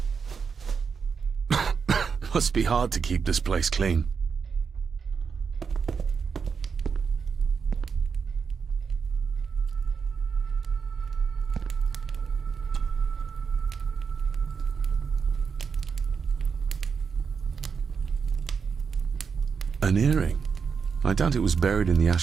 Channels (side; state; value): left; quieter; 5.9 dB